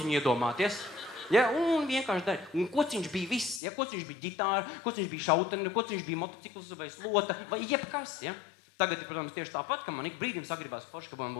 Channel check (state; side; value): drops out; right; at 3.6 s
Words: iedomāties. Ja? Un vienkārši darīju. Un kociņš bija viss. Ja? Kociņš bija ģitāra, kociņš bija šauteni, kociņš bija motocikls vai slota vai jebkas. Ja? Tagad ir, protams, tieši tāpat, ka man ik brīdim sagribās forši, ka man